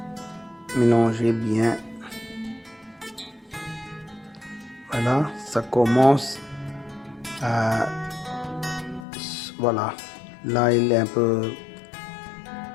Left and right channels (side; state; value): right; drops out; at 9.1 s